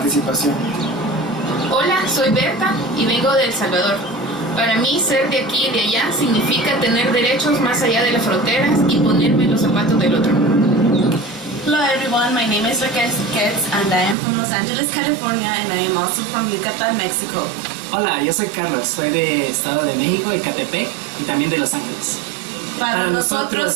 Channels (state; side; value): drops out; left; at 14.2 s